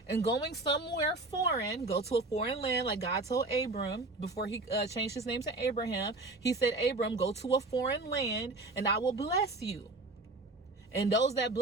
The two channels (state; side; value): quieter; left; 3.0 dB